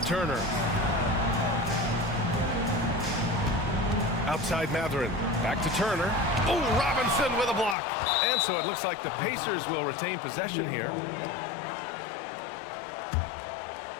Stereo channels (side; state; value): right; drops out; at 7.8 s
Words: Turner. Outside Matherin. Back to Turner. Oh, Robinson with a block. And so it looks like the Pacers will retain possession here.